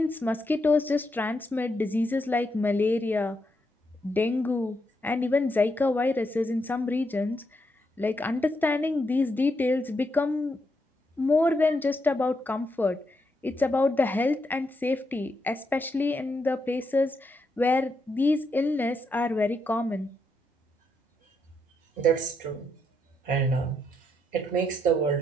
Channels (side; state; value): both; normal; correlation 0.80